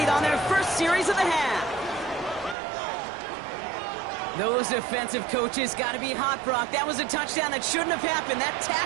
on their first series of the half. Those defensive coaches got to be hot, Brock. That was a touchdown that shouldn't have happened. That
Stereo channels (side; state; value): left; drops out; at 2.6 s